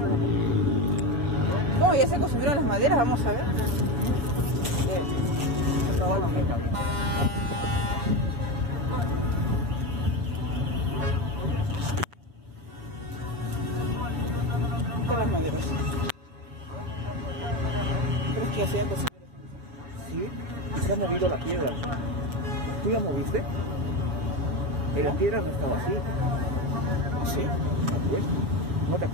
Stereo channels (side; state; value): left; late; 7.0 ms